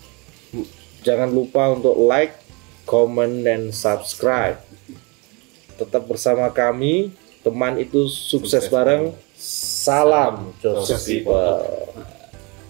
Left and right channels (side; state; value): left; quieter; 29.5 dB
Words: Jangan lupa untuk like, comment, dan subscribe. Tetap bersama kami. Teman itu sukses bareng. Salam Joseph People.